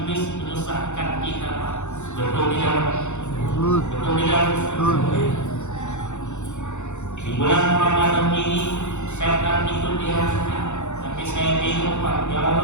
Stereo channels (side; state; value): right; late; 0.83 ms